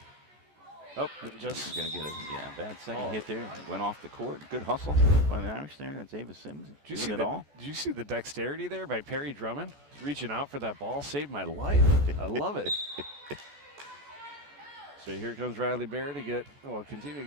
Oh, just going to get a bad second hit there. Went off the court. Good hustle by the Irish there. That's Ava Sims. Did you see the dexterity there by Perry Drummond? Reaching out for that ball saved my life. I love it. So here comes Riley Baird to continue to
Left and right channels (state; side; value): late; left; 14 ms